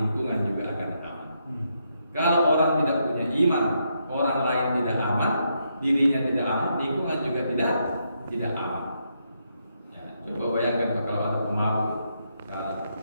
juga akan aman. Kalau orang tidak punya iman, orang lain tidak aman, dirinya tidak aman, lingkungan juga tidak aman. Ya, coba bayangkan kalau ada pemabuk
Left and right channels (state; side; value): inverted; both; correlation -0.79